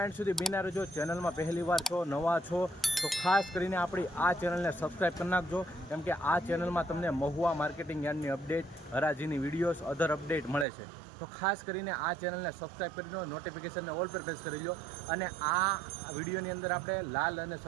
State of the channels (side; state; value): left; drops out; at 10.7 s